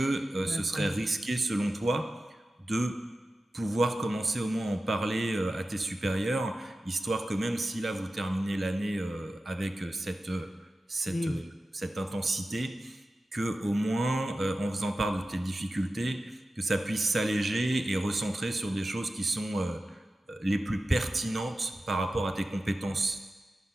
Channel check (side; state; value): both; normal; correlation 0.94